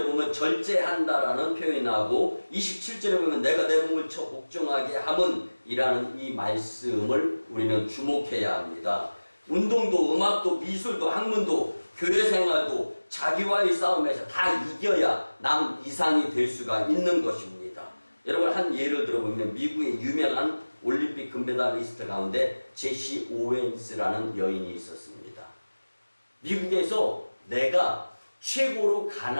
보면 절제한다라는 표현이 나오고 27절에 보면 내가 내 몸을 복종하게 함은 이라는 이 말씀을 우리는 주목해야 합니다. 운동도 음악도 미술도 학문도 교회 생활도 자기와의 싸움에서 다 이겨야 남 이상이 될 수가 있는 것입니다. 여러분 한 예를 들어보면 미국의 유명한 올림픽 금메달리스트 가운데 제시 오웬스라는 여인이 있었습니다. 미국에서 내가 최고로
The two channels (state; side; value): inverted; both; correlation -1.00